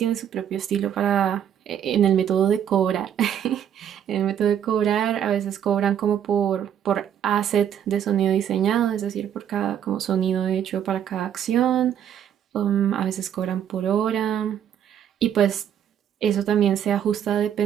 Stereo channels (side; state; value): left; quieter; 9.5 dB